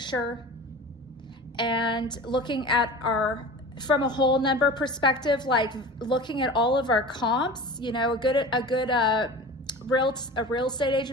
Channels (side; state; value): both; normal; correlation 0.36